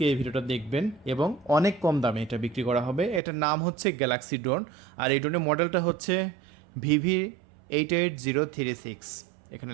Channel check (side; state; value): left; drops out; at 3.2 s